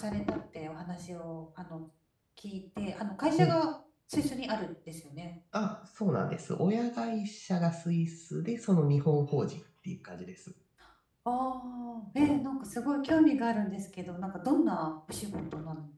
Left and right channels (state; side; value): identical; both; correlation 1.00